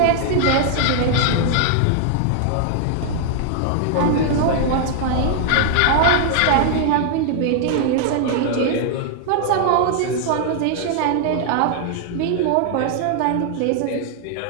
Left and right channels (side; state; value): both; different; correlation 0.00